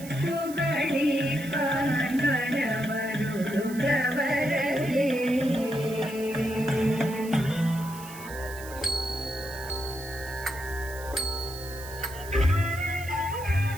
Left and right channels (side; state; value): right; noise; hiss, 16 dB below the sound